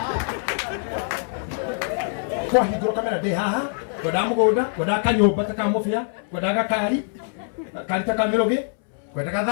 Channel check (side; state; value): right; silent; 63 dB below the other